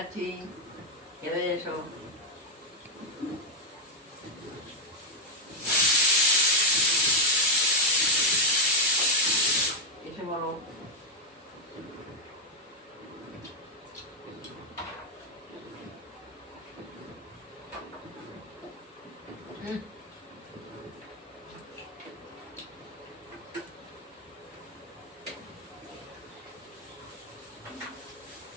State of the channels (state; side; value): normal; both; correlation 0.02